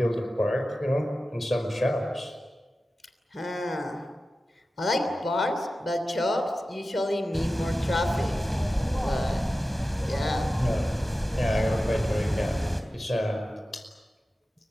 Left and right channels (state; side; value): normal; both; correlation 0.94